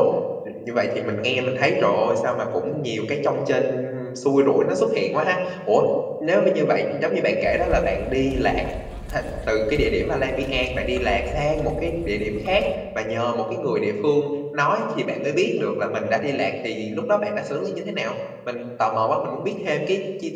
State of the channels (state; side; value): identical; both; correlation 1.00